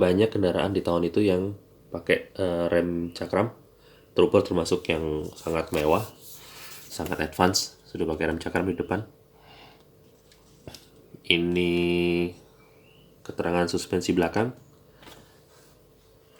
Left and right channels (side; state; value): both; identical; correlation 1.00